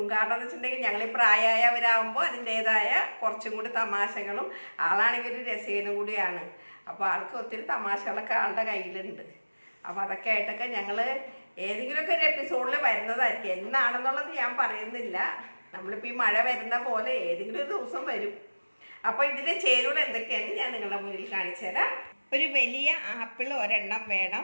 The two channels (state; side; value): inverted; both; correlation -1.00